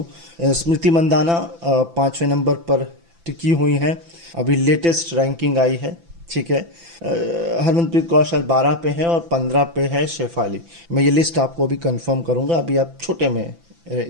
स्मृति मंदाना 5वें नंबर पर टिकी हुई हैं, अभी लेटेस्ट रैंकिंग आई है, ठीक है। हरमनप्रीत कौर शायद 12 पे है और 15 पे है शेफाली। मैं ये लिस्ट आपको अभी कंफर्म करूँगा, अभी आप छोटे में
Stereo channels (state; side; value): late; left; 5.9 ms